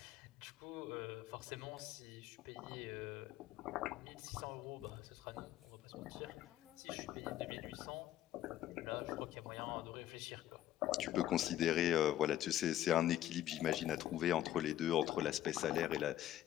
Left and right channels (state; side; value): quieter; right; 12.6 dB